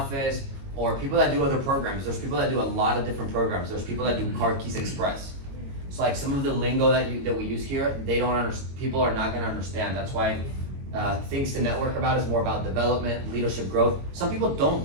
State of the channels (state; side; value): late; left; 22 ms